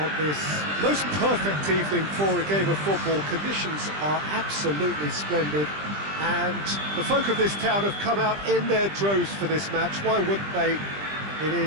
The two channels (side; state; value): left; late; 20 ms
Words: this most perfect evening for a game of football. Conditions are absolutely splendid and the folk of this town have come out in their droves for this match. Why wouldn't they? It